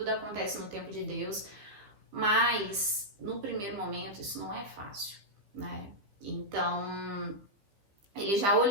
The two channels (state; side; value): late; left; 15 ms